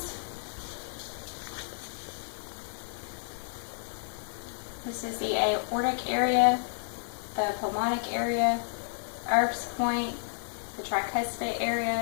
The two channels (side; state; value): right; silent; digital silence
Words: This is the aortic area, the pulmonic area, Erb's point, the tricuspid